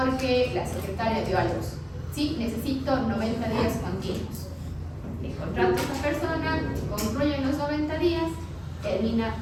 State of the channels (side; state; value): both; identical; correlation 1.00